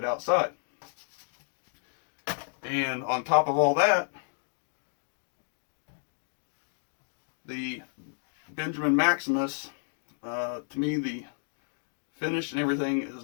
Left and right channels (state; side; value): silent; right; digital silence